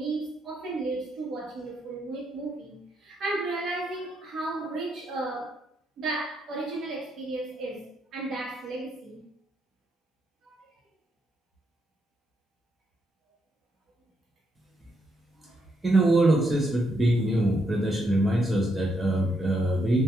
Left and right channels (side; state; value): both; normal; correlation 0.78